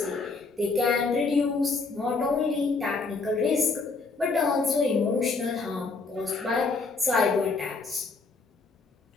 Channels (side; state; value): right; quieter; 4.1 dB